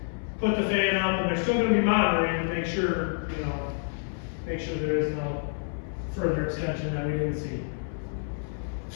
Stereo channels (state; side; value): silent; right; 59 dB below the other